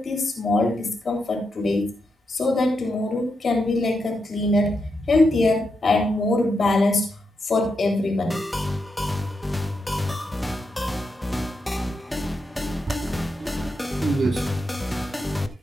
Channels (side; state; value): both; normal; correlation 0.84